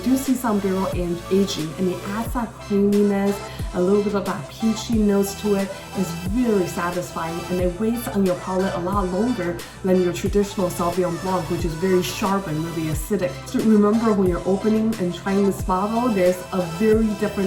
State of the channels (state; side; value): identical; both; correlation 1.00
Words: see some barrel aging, and it adds that creaminess, a little bit of that peachy notes to it. It's really satisfying, and it waits on your palate a lot longer than your traditional Sauvignon Blanc, which is very sharp and really acidic. So remember, when you're opening and trying this bottle, there's a very